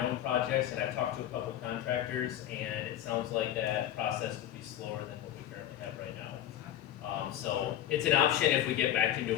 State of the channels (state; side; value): quieter; right; 11.7 dB